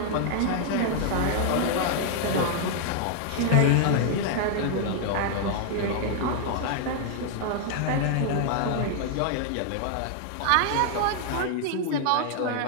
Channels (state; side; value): different; both; correlation 0.00